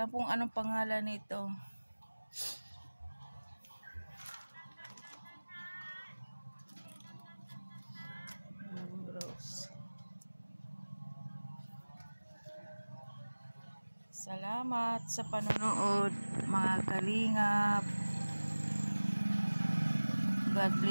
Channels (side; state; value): both; inverted; correlation -1.00